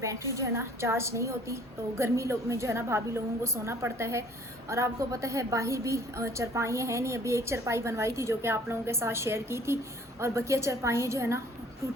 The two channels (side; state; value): both; normal; correlation 0.54